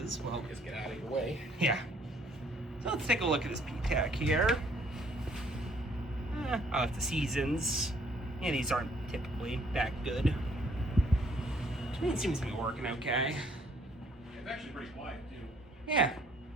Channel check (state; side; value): normal; both; correlation 0.63